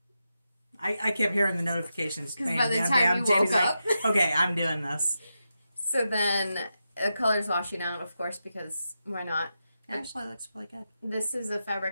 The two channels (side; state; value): both; inverted; correlation -0.88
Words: I kept hearing the notifications. Because by the time you woke up. Like, okay, I'm doing this. So then the color's washing out, of course, because why not? It actually looks really good. This is a